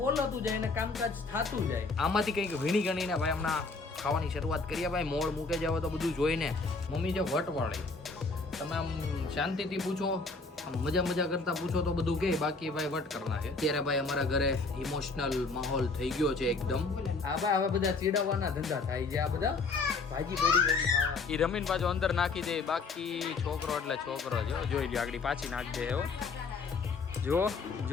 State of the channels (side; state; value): right; quieter; 4.0 dB